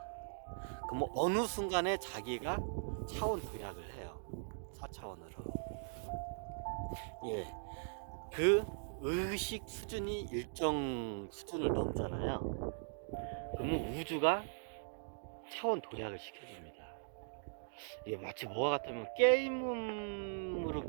그럼 뭐 어느 순간에 자기가 차원 도약을 해요. 4차원으로. 예. 그 의식 수준이 일정 수준을 넘잖아요. 그러면 우주가 차원 도약을 시켜줍니다. 이게 마치 뭐와 같으면 게임으로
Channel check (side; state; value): left; silent; digital silence